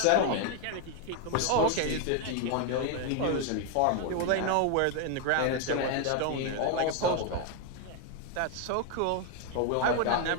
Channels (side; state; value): both; different; correlation 0.01